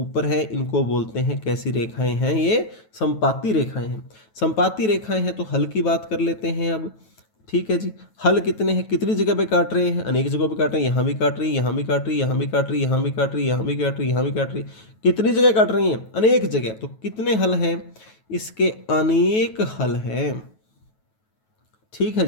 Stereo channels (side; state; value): right; late; 9.2 ms